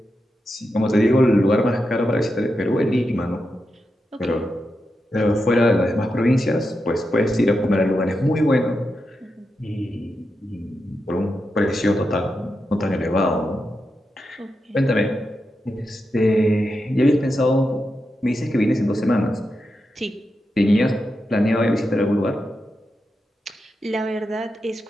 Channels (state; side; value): normal; both; correlation 0.88